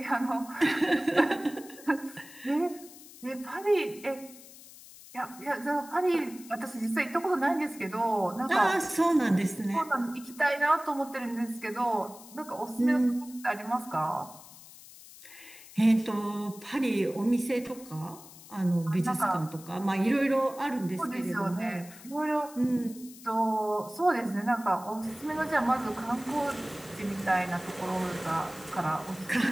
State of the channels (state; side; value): noise; left; hiss, 19 dB below the sound